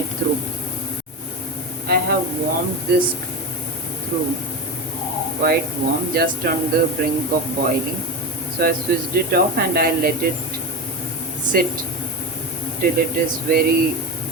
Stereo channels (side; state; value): both; normal; correlation 0.21